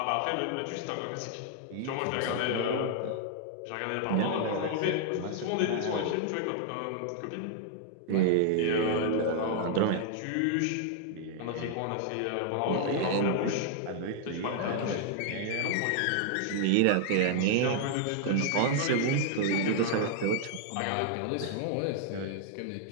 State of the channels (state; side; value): different; both; correlation 0.00